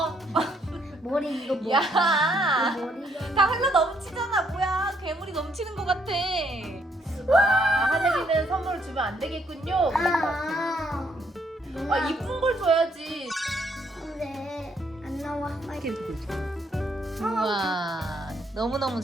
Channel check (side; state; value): both; normal; correlation 0.71